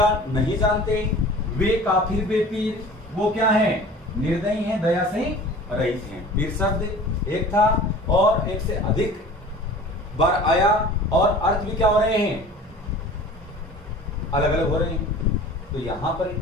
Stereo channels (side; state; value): both; normal; correlation 0.42